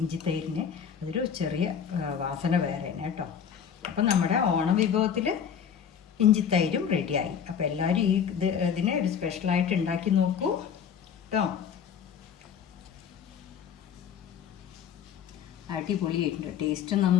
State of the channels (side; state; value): right; quieter; 7.8 dB